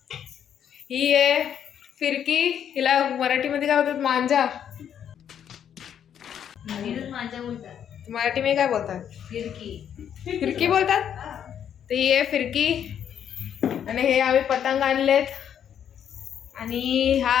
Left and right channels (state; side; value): quieter; right; 9.1 dB